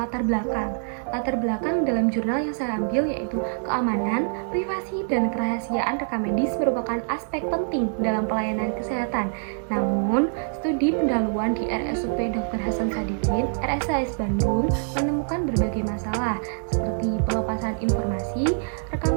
belakang. Latar belakang dalam jurnal yang saya ambil yaitu keamanan, privasi, dan kerahasiaan rekam medis merupakan aspek penting dalam pelayanan kesehatan. Namun, studi pendahuluan di RSUP Dr. Hasan Sadikin, RSAS Bandung, menemukan berbagai masalah seperti pelepasan informasi, rekam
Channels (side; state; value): left; silent; digital silence